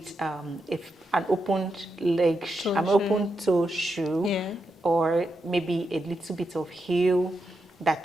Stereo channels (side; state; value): both; normal; correlation 0.85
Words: an open leg, an open toe shoe, Yeah. or maybe a little bit of heel,